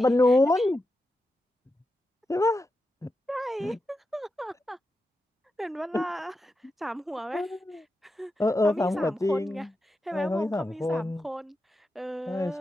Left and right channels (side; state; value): both; normal; correlation 0.89